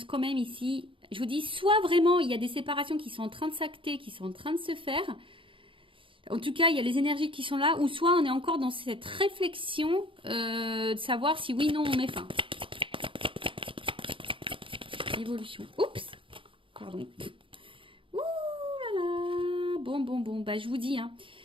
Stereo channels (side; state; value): left; late; 0.25 ms